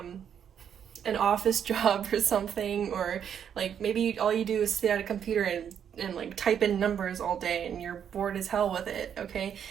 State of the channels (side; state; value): left; quieter; 8.5 dB